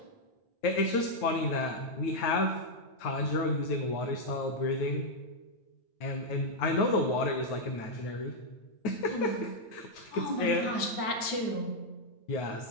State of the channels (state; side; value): late; right; 9.5 ms